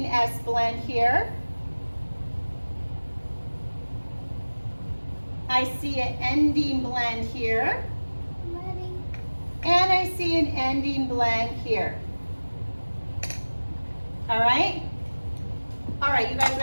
S blend here. I see an ending blend here. And I see an ending blend here. All right? All right, you guys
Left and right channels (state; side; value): inverted; both; correlation -1.00